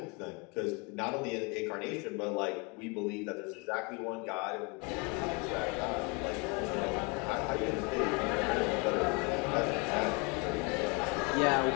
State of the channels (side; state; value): right; quieter; 30.3 dB